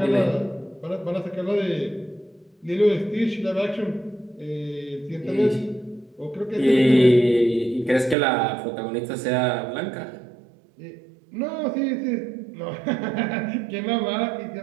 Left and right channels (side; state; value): left; drops out; at 8.2 s